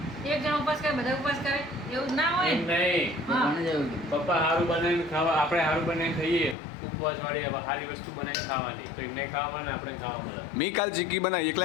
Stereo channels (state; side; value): drops out; right; at 6.6 s